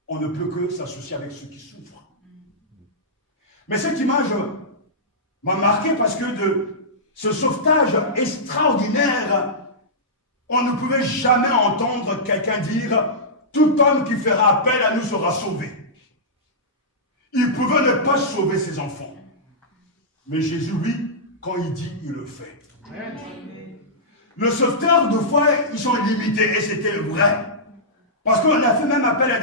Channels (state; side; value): normal; both; correlation -0.14